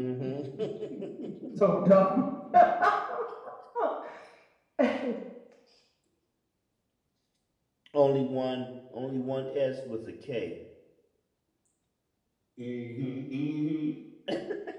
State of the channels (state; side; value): identical; both; correlation 1.00